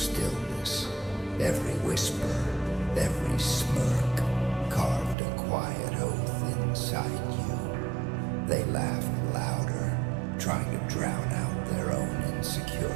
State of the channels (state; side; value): drops out; left; at 5.2 s